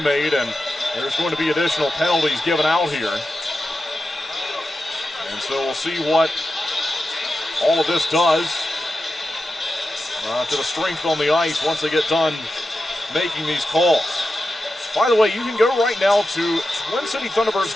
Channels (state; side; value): normal; both; correlation 0.91